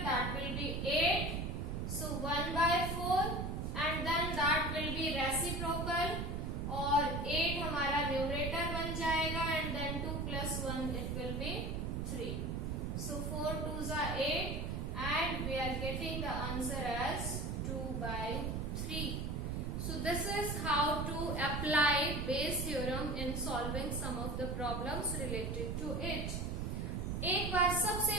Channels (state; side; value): noise; right; rumble, 2 dB below the sound